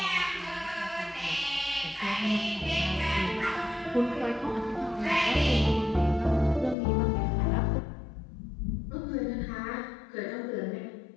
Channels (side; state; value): right; drops out; at 6.8 s